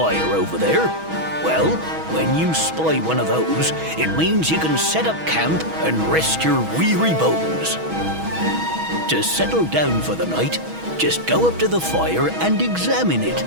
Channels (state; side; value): late; left; 6.2 ms